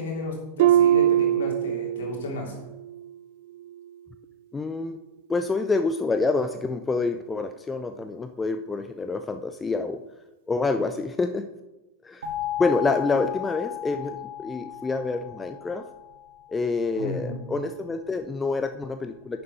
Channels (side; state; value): both; normal; correlation 0.27